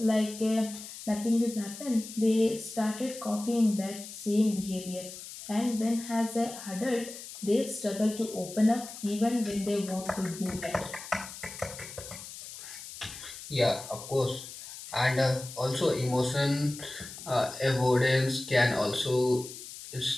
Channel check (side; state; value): left; noise; hiss, 13 dB below the sound